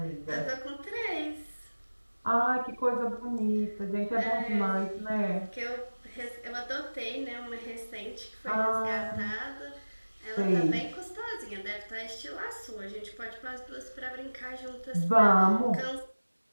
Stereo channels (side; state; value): both; inverted; correlation -1.00